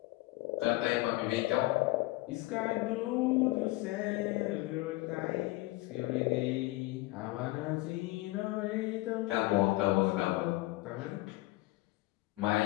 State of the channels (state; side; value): quieter; right; 20.1 dB